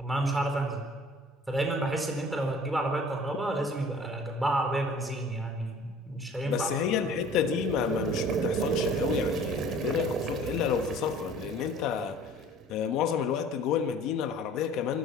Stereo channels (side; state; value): both; normal; correlation 0.49